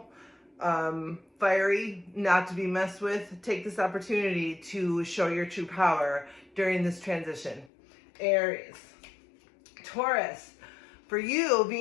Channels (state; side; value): drops out; right; at 7.7 s